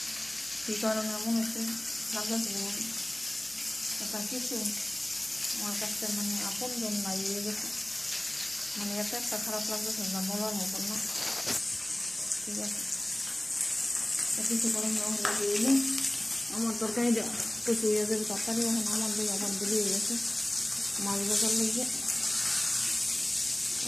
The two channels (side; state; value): right; noise; hum, 24 dB below the sound